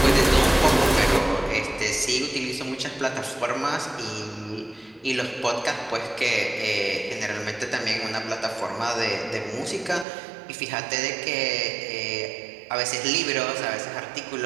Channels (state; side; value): drops out; left; at 10.1 s